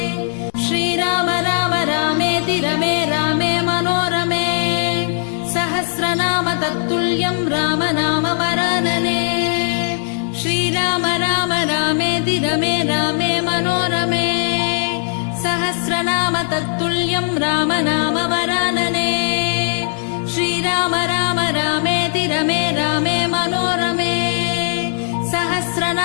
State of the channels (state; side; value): silent; right; digital silence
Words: श्रीराम राम रामेति रमे रामे मनोरमे सहस्रनाम तत्तुल्यं राम नाम वरानने श्रीराम राम रामेति रमे रामे मनोरमे सहस्रनाम तत्तुल्यं राम नाम वरानने श्रीराम राम रामेति रमे रामे मनोरमे